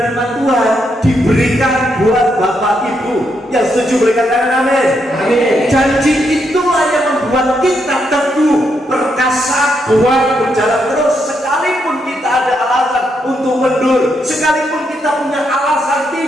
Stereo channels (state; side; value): normal; both; correlation 0.79